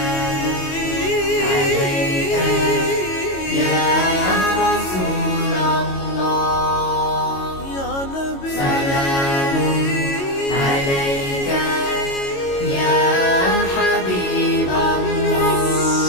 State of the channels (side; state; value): right; late; 22 ms